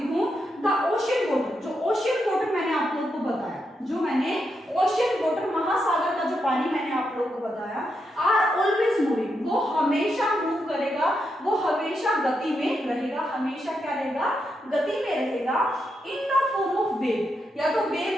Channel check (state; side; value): normal; both; correlation 0.83